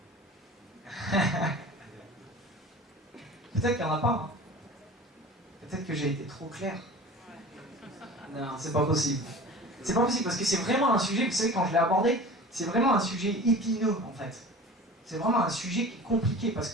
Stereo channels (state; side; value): normal; both; correlation 0.39